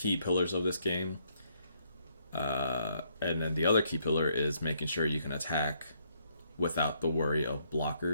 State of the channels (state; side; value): inverted; both; correlation -0.72